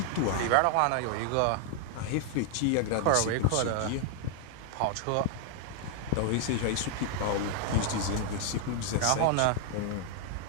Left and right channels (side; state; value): both; different; correlation 0.00